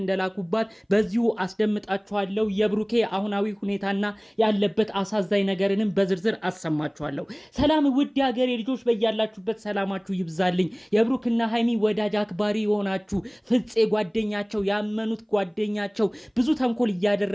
እንደላኩባት በዚሁ አስደምጣችኋለሁ። የብሩኬ አሁናዊ ሁኔታና ያለበት አሳዛኝ ነገርንም በዝርዝር አሰማችኋለሁ። ሰላም ውድ ሀገሬ ልጆች፣ በያላችሁበት ሰላማችሁ ይብዛልኝ። የብሩክና ሃይሚ ወዳጅ አክባሪ የሆናችሁ ፍፄ ጓደኛቸው ያመኑት ጓደኛቸው ብዙ ተንኮል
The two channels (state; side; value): identical; both; correlation 1.00